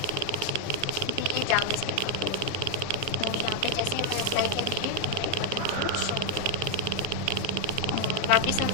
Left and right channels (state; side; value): different; both; correlation 0.01